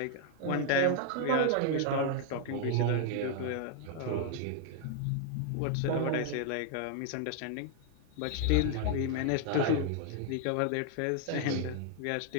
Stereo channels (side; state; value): both; different; correlation 0.00